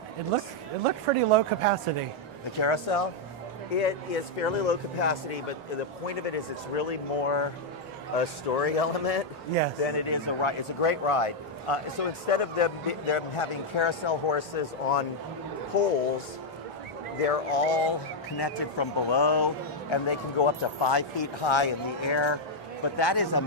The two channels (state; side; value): normal; both; correlation -0.01